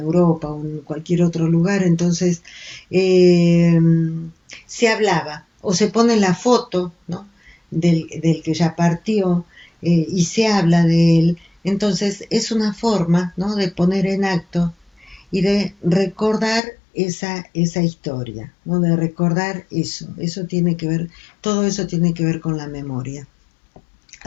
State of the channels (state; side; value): drops out; right; at 16.6 s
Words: o en cualquier otro lugar, entonces eh, se hablaba o se pone la foto, ¿no? Del que ya partió y se habla de él. Entonces es una forma, ¿no?, de poner en acto y de recordar esa historia, ¿no?, de recordar eso tiene que ver, todo eso tiene que ver con la memoria.